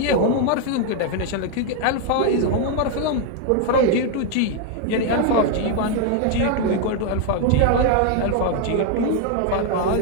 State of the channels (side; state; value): both; different; correlation 0.00